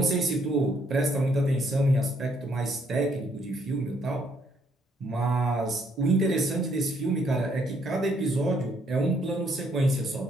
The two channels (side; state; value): both; normal; correlation 0.69